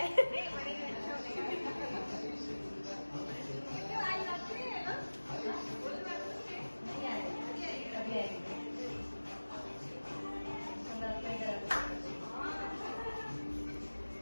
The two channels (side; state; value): both; inverted; correlation -1.00